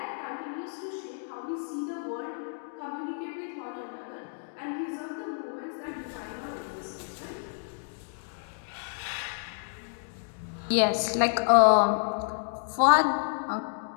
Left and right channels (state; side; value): silent; right; digital silence